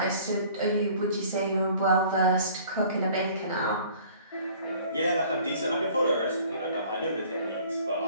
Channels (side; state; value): both; inverted; correlation -0.51